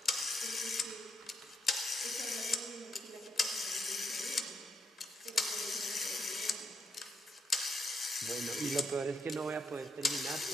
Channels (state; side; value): normal; both; correlation 0.78